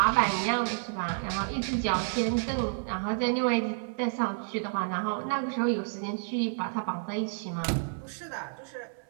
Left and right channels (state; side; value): silent; left; 56 dB below the other